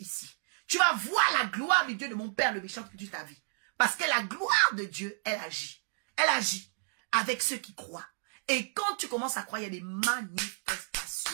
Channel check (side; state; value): left; silent; digital silence